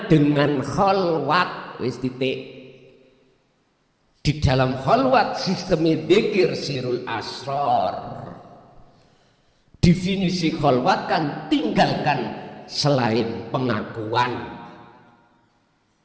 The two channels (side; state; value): both; identical; correlation 1.00